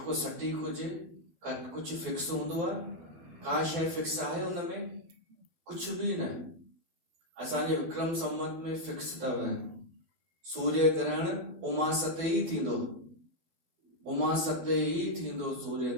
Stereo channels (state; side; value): late; left; 12 ms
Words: सटीक हुजे, कुछ फिक्स हूंदो आहे? का शइ फिक्स आहे उनमें? कुछ भी न। असांजे विक्रम संवत में फिक्स अथव, सूर्य ग्रहण उमास ते ई थींदो, उमास ते ई थींदो सूर्य